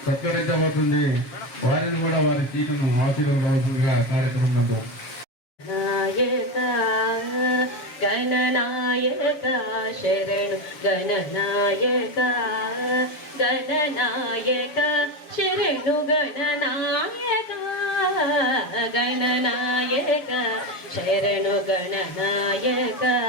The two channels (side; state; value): right; late; 7.3 ms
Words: సత్కరించబోతుంది. వారిని కూడా వారి సీటును ఆశీర్వదించవలసిందిగా కార్యక్రమం నందు గణనాయక శరణు గణనాయక గణనాయక శరణు గణనాయక గణనాయక శరణు గణనాయక